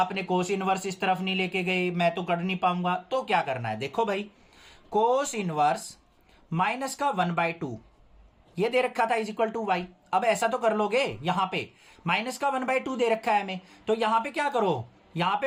कोस इनवर्स इस तरफ नहीं लेके गए, मैं तो कर नहीं पाऊंगा। तो क्या करना है, देखो भाई, कोस इनवर्स माइनस का 1/2 ये दे रखा था इज इक्वल टू y। अब ऐसा तो कर लोगे, यहां पे माइनस का 1/2 दे रखा है हमें, तो यहां पे क्या करो, यहां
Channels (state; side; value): identical; both; correlation 1.00